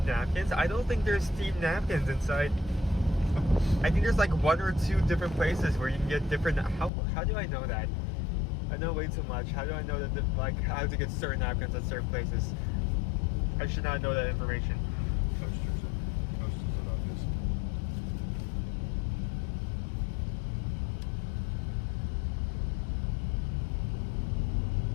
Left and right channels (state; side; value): drops out; right; at 6.9 s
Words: napkins. I don't think there's themed napkins inside. I think there's like 1 or 2 different places where you can get different. How do I know that? I know way too much. How do I know that like how to get certain napkins at certain places? I should not know that information. Coasters are obvious.